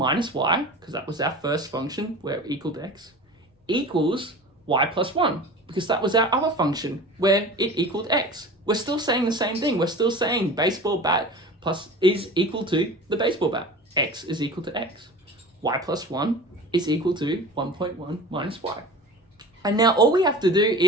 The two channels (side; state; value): both; normal; correlation 0.36